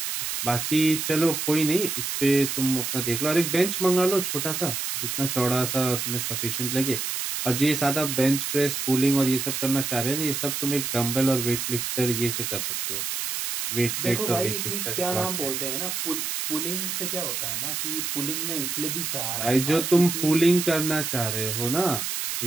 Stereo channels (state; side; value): noise; right; hiss, 2 dB below the sound